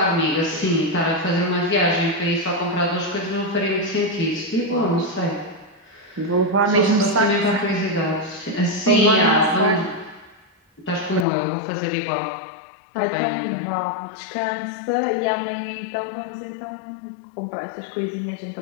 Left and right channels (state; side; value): drops out; right; at 11.2 s